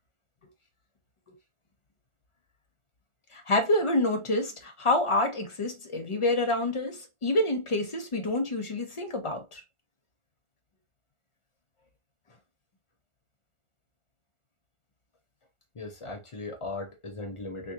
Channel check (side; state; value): right; late; 1.4 ms